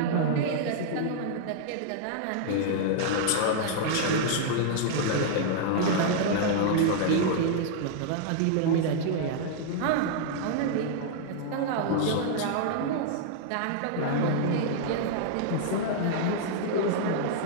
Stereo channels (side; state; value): both; different; correlation -0.01